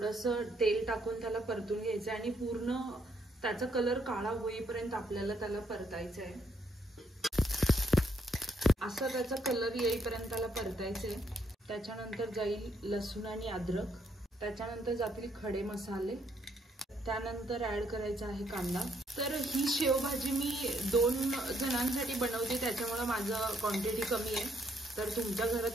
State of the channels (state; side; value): normal; both; correlation 0.72